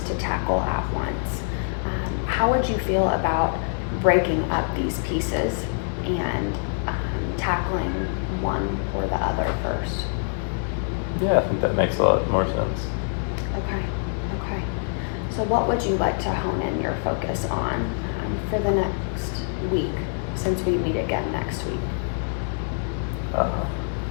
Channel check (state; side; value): silent; right; 62 dB below the other